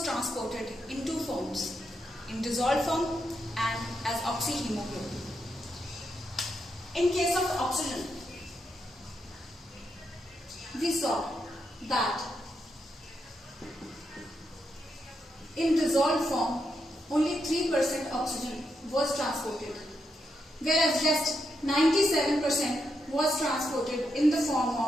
transported in two forms, in dissolved form and as oxyhemoglobin. In case of oxygen, we saw that in dissolved form, only 3% oxygen was transported, whereas just 97% was transported in the form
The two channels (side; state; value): both; normal; correlation 0.83